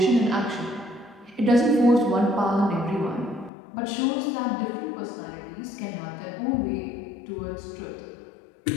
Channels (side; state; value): right; drops out; at 3.5 s